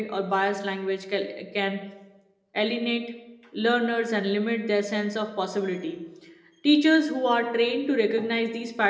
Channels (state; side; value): identical; both; correlation 1.00